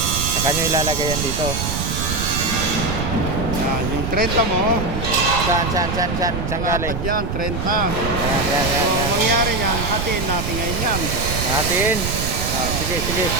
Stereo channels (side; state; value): right; noise; rumble, 3 dB below the sound